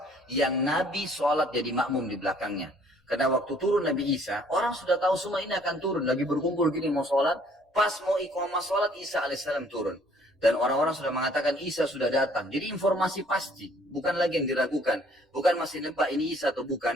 yang Nabi sholat jadi makmum di belakangnya. Karena waktu turun Nabi Isa, orang sudah tahu semua ini akan turun, lagi berkumpul gini mau sholat, pas mau iqamah sholat Isa alaihissalam turun. Dan orang-orang sudah mengatakan Isa sudah datang. Jadi informasi pasti, bukan lagi yang diragukan. Bukan masih nebak ini Isa atau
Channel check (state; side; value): normal; both; correlation 0.59